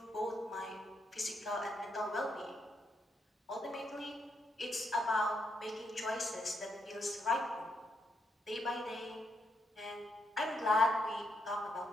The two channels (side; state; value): both; normal; correlation 0.79